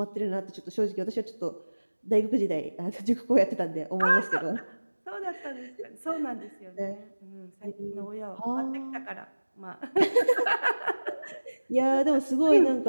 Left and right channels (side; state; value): both; inverted; correlation -1.00